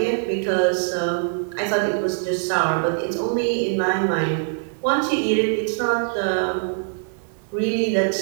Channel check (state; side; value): silent; left; digital silence